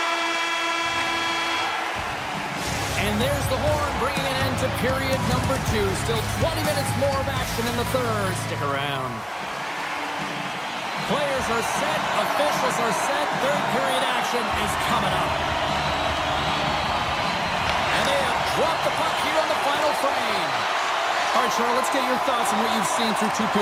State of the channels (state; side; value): identical; both; correlation 1.00